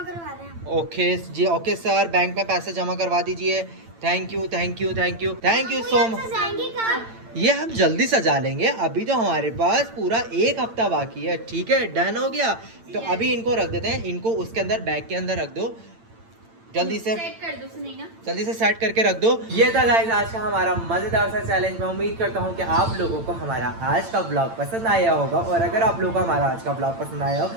रहे हैं। ओके जी, ओके सर, बैंक में पैसे जमा करवा दीजिए। Thank you so much. ये हम जल्दी सजा लेंगे, अभी तो हमारे पास पूरा 1 हफ्ता बाकी है। ठीक है, डन हो गया। तो अभी इनको रख देते हैं, इनको उसके अंदर बैग के अंदर रख दो, जल्दी से सेट कर दो सुनैना। जल्दी से सेट करके रख दो। ये था गाइस आज का हमारा मजेदार सा चैलेंज। मैं उम्मीद करता हूँ कि आप लोगों को हमारा आज का ब्लॉग पसंद आया होगा और अगर आप लोगों को हमारा आज का ब्लॉग पसंद आया हो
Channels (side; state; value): left; late; 8.9 ms